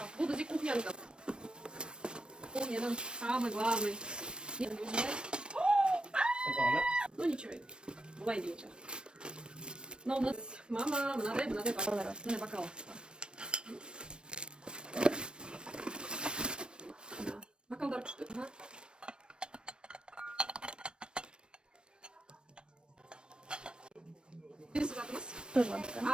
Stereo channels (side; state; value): left; late; 0.054 ms